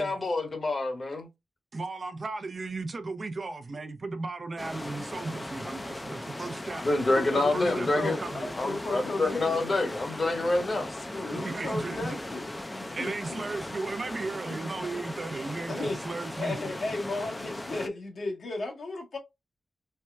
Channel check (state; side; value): normal; both; correlation 0.91